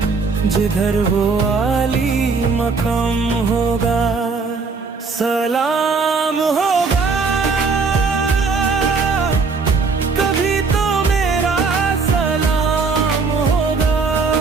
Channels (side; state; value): left; quieter; 4.7 dB